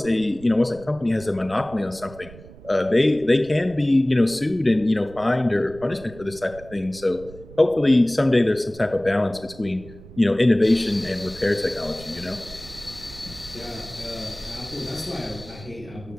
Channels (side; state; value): right; noise; rumble, 19 dB below the sound